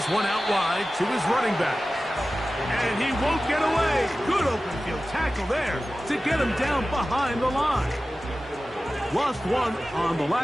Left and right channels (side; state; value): both; normal; correlation 0.95